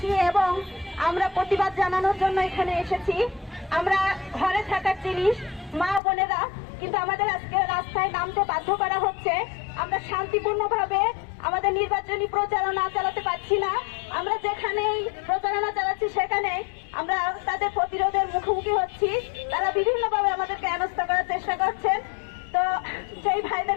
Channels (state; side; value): drops out; right; at 6.0 s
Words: এবং আমরা প্রতিবাদ জানানোর জন্য এখানে এসেছি। আমরা ঘরে থাকার জিনিস মা বোনেরা, কিন্তু আমাদের আজকে রাস্তায় নামতে বাধ্য করা হচ্ছে। আমরা শান্তিপূর্ণভাবে আমাদের নির্বাচনী প্রচারণা চালাতে পারছি না। আমরা যেখানেই প্রচারণা চালাচ্ছি সেখানে আমরা তাদের প্রতিরোধের মুখোমুখি হচ্ছি। তারা বিভিন্নভাবে আমাদেরকে হেনস্থা করার চেষ্টা করছেন। তো সেই